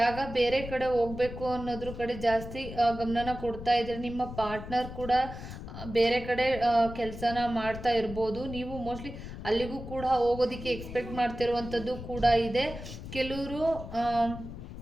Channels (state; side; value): noise; left; rumble, 10 dB below the sound